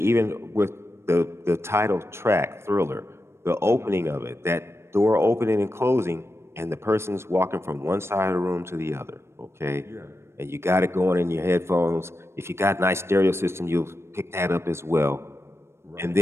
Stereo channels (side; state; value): left; late; 0.13 ms